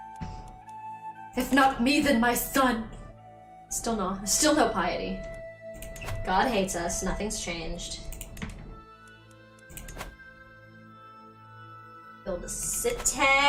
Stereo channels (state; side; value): identical; both; correlation 1.00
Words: If not me, then my son. Still no piety. God hates us, nothing's changed. Build a